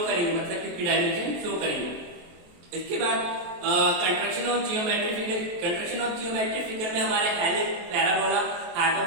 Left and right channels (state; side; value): late; left; 23 ms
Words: करेंगे, मतलब कि डायमेंशन शो करेंगे। इसके बाद construction of geometric figure. Construction of geometric figure में हमारे हेलिक्स, पैराबोला,